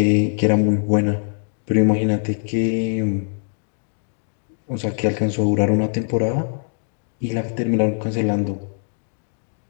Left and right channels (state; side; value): silent; right; 64 dB below the other